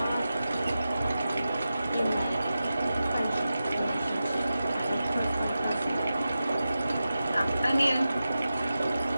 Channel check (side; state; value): both; inverted; correlation -0.92